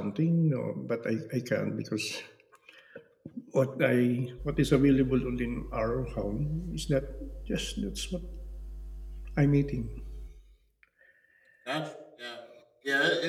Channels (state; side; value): identical; both; correlation 1.00